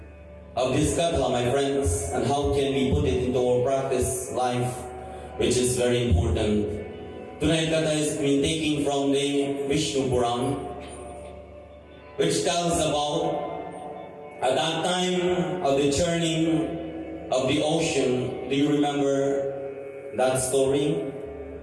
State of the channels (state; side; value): identical; both; correlation 1.00